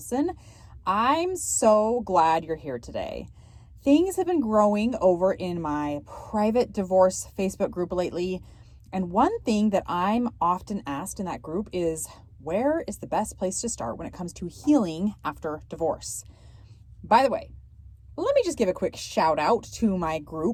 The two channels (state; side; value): identical; both; correlation 1.00